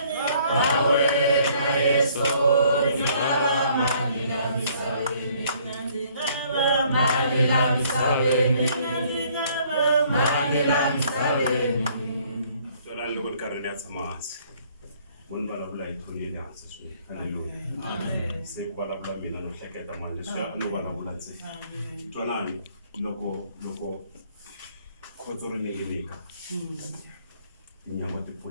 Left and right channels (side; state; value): both; inverted; correlation -0.62